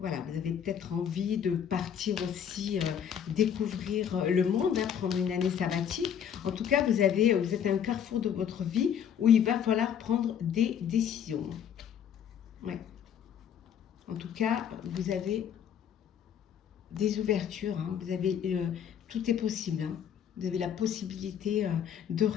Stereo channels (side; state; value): right; quieter; 8.7 dB